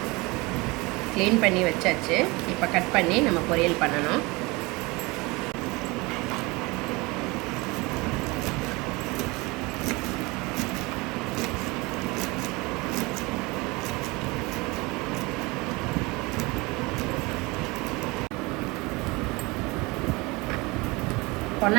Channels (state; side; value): quieter; left; 24.5 dB